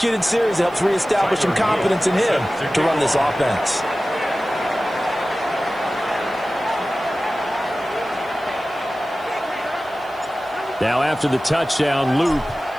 series that helps reestablish some confidence in him to run this offense. Now after the touchdown, Loop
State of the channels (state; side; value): noise; right; hiss, 28 dB below the sound